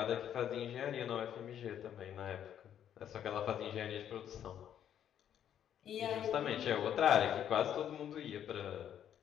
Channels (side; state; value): right; quieter; 9.8 dB